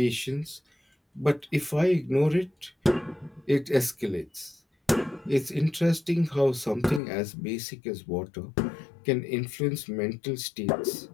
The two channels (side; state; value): right; drops out; at 7.0 s